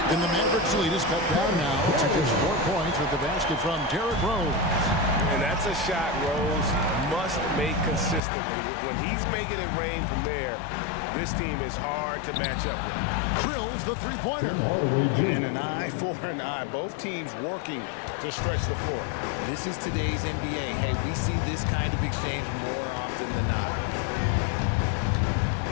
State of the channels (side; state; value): right; drops out; at 8.2 s